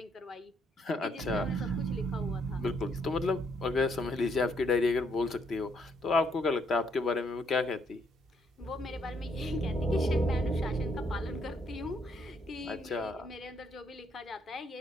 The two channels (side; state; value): both; normal; correlation 0.72